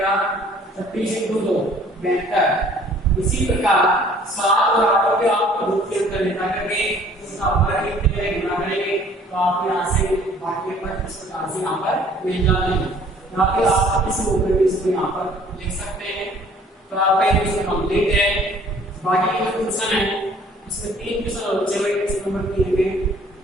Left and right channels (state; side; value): normal; both; correlation 0.55